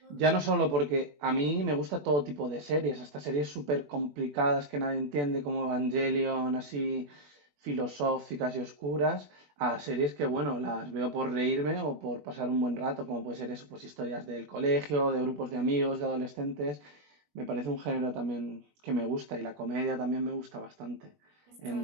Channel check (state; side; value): late; left; 21 ms